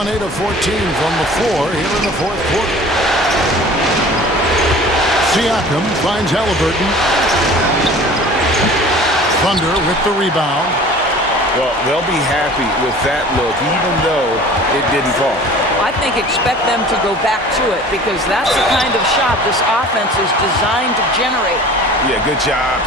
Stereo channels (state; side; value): normal; both; correlation 0.44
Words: 8 of 14 from the floor here in the 4th quarter. Siakam finds Halliburton. Thunder with the rebound. Well, they'll be happy with that look, even though it didn't fall. I think expect them to go back to it because that's the kind of shot this offense is designed to generate. Yeah, good job